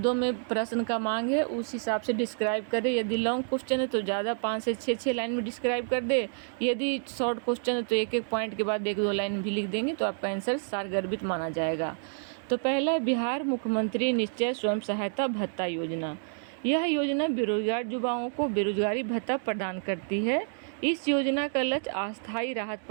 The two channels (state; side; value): silent; left; digital silence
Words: में प्रश्न का मांग है, उस हिसाब से डिस्क्राइब करें। यदि लॉन्ग क्वेश्चन है तो ज़्यादा 5 से 6 लाइन में डिस्क्राइब कर दे। यदि शॉर्ट क्वेश्चन है तो एक पॉइंट के बाद 1-2 लाइन भी लिख देंगे तो आपका आंसर सारगर्भित माना जाएगा। तो पहला, बिहार मुख्यमंत्री निश्चय स्वयं सहायता भत्ता योजना। यह योजना बेरोजगार युवाओं को बेरोजगारी भत्ता प्रदान करती है। इस योजना का लक्ष्य अस्थायी राहत